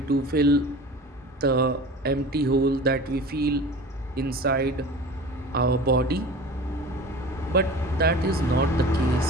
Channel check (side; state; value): both; normal; correlation 0.38